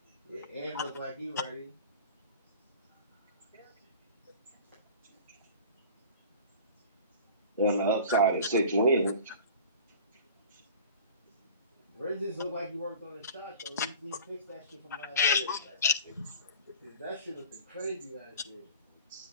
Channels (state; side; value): inverted; both; correlation -0.40